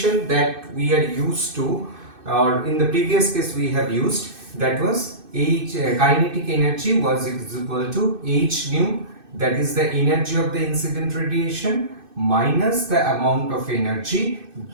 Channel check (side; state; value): left; late; 2.6 ms